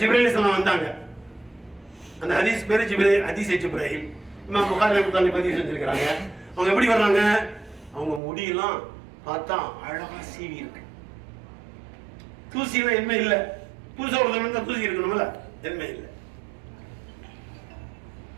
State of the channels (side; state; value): left; drops out; at 8.2 s